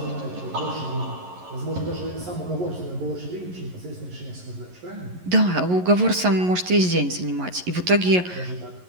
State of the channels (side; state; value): left; late; 11 ms